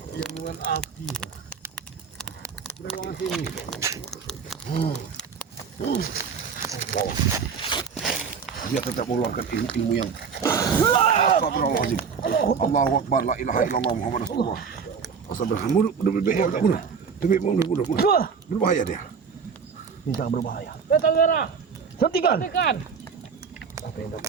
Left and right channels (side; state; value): left; quieter; 6.1 dB